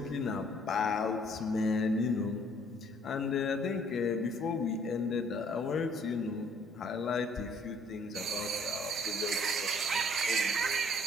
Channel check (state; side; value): normal; both; correlation 0.61